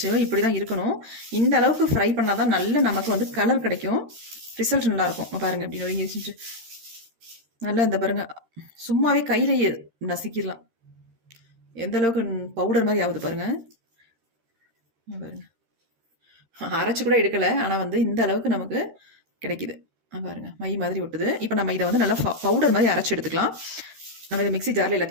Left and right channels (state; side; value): late; left; 13 ms